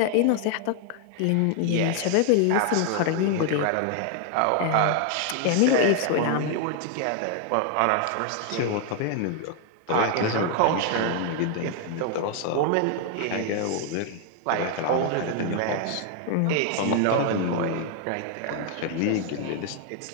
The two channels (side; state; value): both; different; correlation 0.00